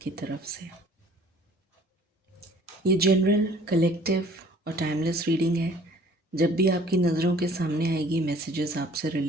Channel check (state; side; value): normal; both; correlation 0.53